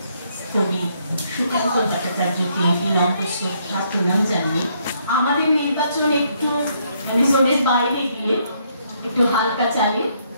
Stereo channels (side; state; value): both; inverted; correlation -0.71